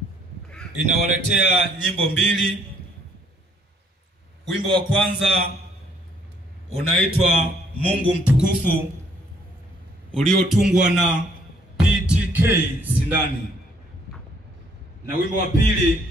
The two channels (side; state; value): both; normal; correlation 0.65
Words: Inawaletea nyimbo mbili. Wimbo wa kwanza unaitwa Mungu Mtukufu, uliotungwa na PTK Sindani, na wimbo wa pili